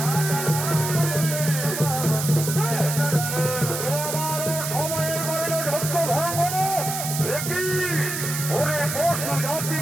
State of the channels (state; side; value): noise; right; hiss, 4 dB below the sound